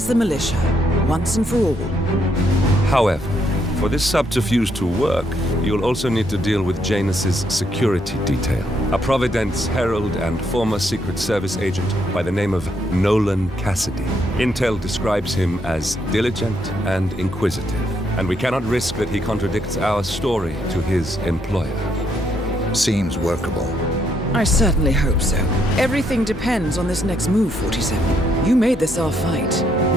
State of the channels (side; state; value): both; normal; correlation 0.74